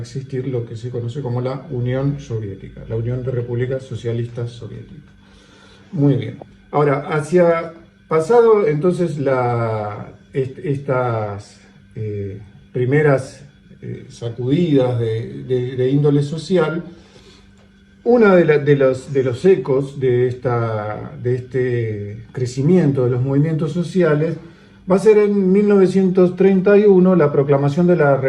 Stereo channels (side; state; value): both; identical; correlation 1.00